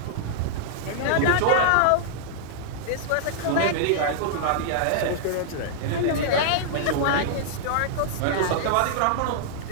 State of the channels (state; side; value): different; both; correlation -0.02